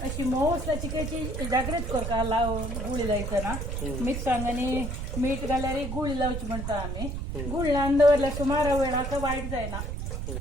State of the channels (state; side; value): noise; right; rumble, 4 dB below the sound